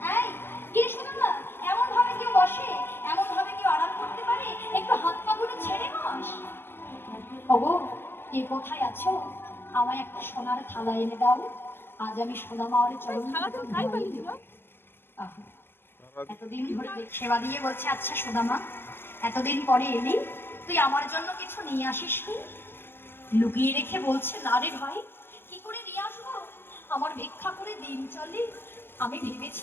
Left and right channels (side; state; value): right; late; 0.11 ms